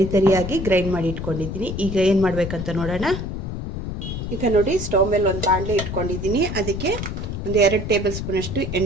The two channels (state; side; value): noise; left; rumble, 5 dB below the sound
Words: ತರಿಯಾಗಿ ಗ್ರೈಂಡ್ ಮಾಡಿ ಇಟ್ಕೊಂಡಿದ್ದೀನಿ. ಈಗ ಏನು ಮಾಡಬೇಕಂತ ನೋಡೋಣ. ಈಗ ನೋಡಿ, ಸ್ಟವ್ ಮೇಲೆ ಒಂದು ಬಾಣಲೆ ಇಟ್ಕೊಂಡಿದ್ದೀನಿ. ಅದಕ್ಕೆ ಒಂದು 2 ಟೇಬಲ್ ಸ್ಪೂನಷ್ಟು